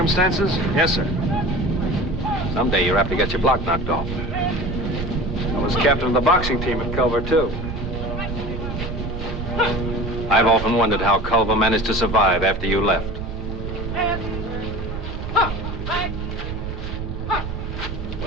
yes, sir. Someday you're apt to get your block knocked off. I was captain of the boxing team at Culver, too. I've often wondered how Culver managed to survive after you left.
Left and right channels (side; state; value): right; noise; rumble, 6 dB below the sound